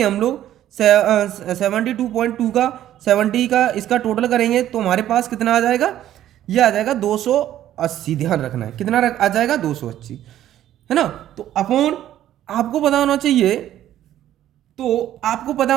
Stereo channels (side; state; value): left; quieter; 12.3 dB